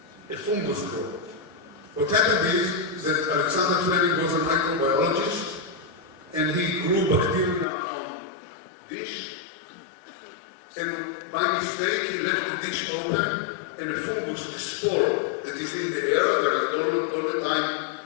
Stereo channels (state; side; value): drops out; right; at 7.7 s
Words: a fungus grow. What happened is that Alexander Fleming was a microbiologist, and he grew bacteria on dish, and by mistake he left the dish open, and a fungus, a spore that is in the air, there is all the time